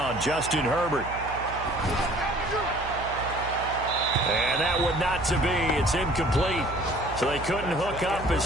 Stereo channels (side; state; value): right; noise; hum, 12 dB below the sound